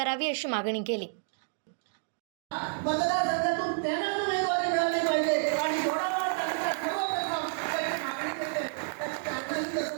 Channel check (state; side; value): silent; left; digital silence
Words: अशी मागणी केली। मतदारसंघातून त्यांना उमेदवारी मिळाली पाहिजे आणि